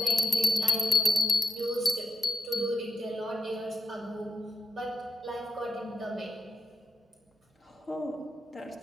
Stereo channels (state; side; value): normal; both; correlation 0.87